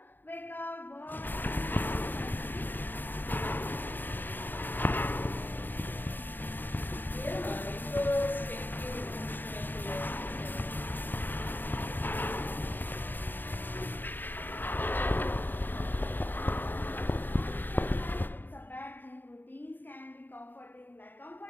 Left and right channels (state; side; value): late; right; 0.091 ms